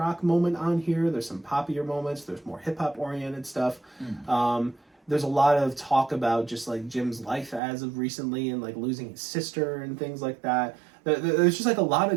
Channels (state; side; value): drops out; left; at 7.6 s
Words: moment on here. There's some poppier moments. There's more hip hop oriented stuff. There's a lot of talk about just like Jim's life as of recently and like losing his sister and things like that. There's just like a lot